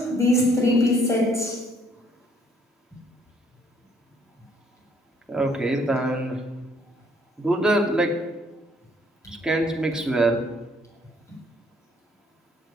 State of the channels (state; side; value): normal; both; correlation 0.65